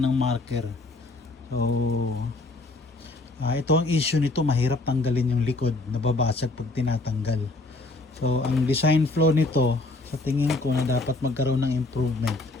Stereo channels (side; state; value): right; quieter; 3.1 dB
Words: ng marker. So ito ang issue nito, mahirap tanggalin yung likod, nababasag pag tinatanggal. So ang design flaw nito, sa tingin ko na dapat magkaroon ng improvement.